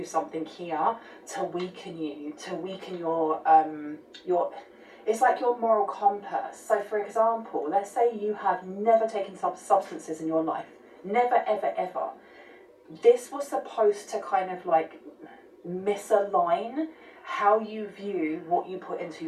something here to weaken you, to weaken your it's like your moral compass. So for example, let's say you have never taken substances in your life. Never, ever, ever. This was supposed to kind of like misalign how you view what you put into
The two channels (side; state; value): both; identical; correlation 1.00